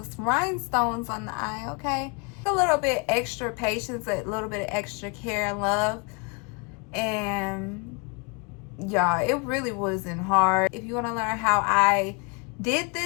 rhinestones on the eye, okay? A little bit extra patience, a little bit of extra care and love, and y'all, it really wasn't hard. If you want to learn how I did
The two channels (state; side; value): quieter; right; 32.8 dB